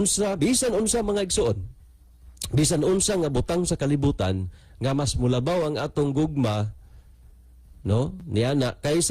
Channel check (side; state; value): both; identical; correlation 1.00